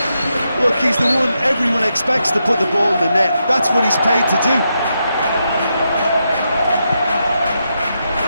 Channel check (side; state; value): both; inverted; correlation -0.84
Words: Look, he's the one everyone expects to put the ball in the net. That's what he's paid to do.